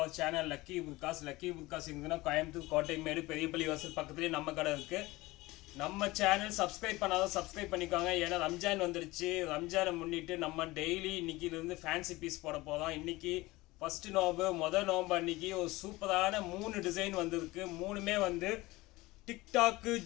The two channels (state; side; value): quieter; right; 20.4 dB